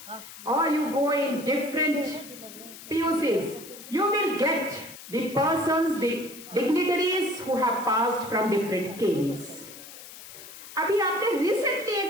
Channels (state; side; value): noise; left; hiss, 15 dB below the sound